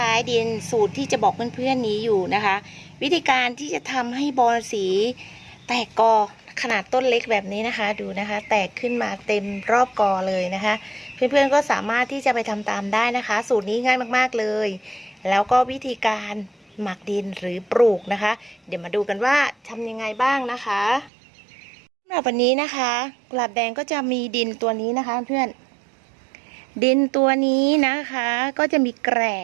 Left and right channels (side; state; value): left; drops out; at 21.1 s